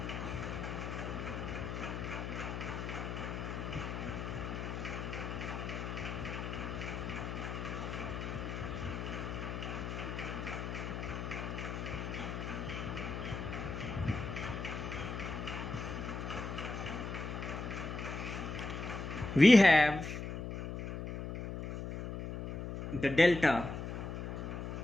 we have the delta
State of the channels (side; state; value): left; noise; hum, 4 dB below the sound